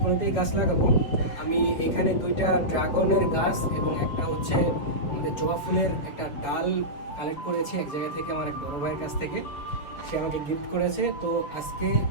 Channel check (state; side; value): late; right; 7.0 ms